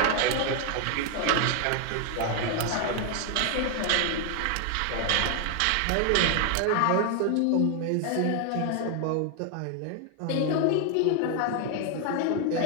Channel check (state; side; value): different; both; correlation 0.00